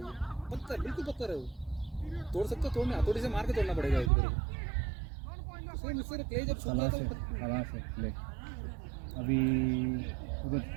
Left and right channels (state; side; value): drops out; left; at 4.1 s